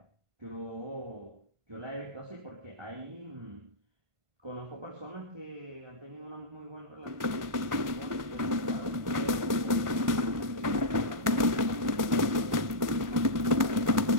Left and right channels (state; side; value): late; left; 1.5 ms